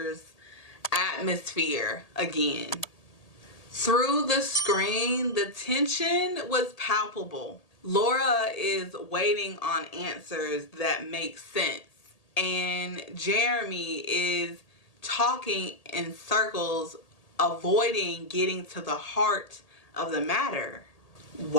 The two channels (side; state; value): right; late; 1.8 ms